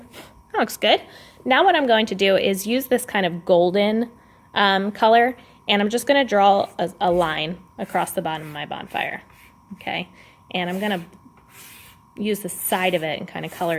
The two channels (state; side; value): identical; both; correlation 1.00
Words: looks good. Now what I'm going to do is use this kind of golden color, and I'm just going to draw a line across the bottom of my bonfire. Okay, and I'm going to use the side of it and kind of color